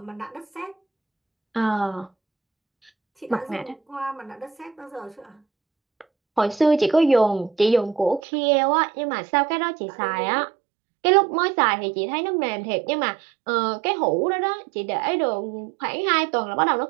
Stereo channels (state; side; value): drops out; left; at 8.2 s